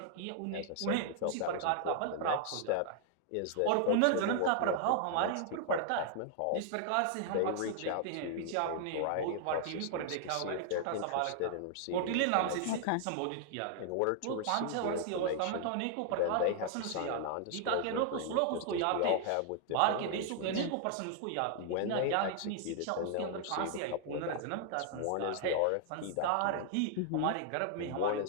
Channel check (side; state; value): both; different; correlation -0.01